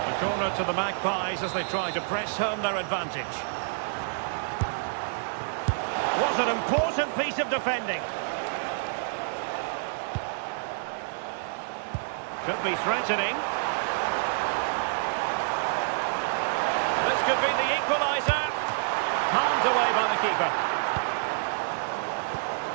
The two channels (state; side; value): silent; left; digital silence